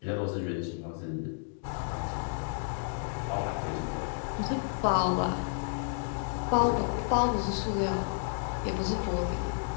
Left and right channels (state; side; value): silent; right; 57 dB below the other